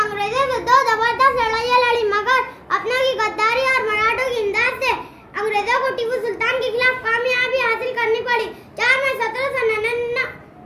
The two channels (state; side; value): identical; both; correlation 1.00